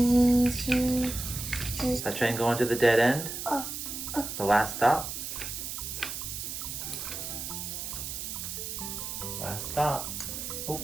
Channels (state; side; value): noise; right; hiss, 6 dB below the sound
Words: That train going to the dead end? The last stop? Last stop. Oh.